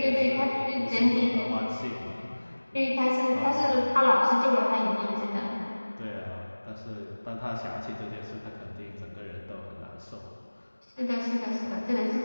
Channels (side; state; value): both; inverted; correlation -1.00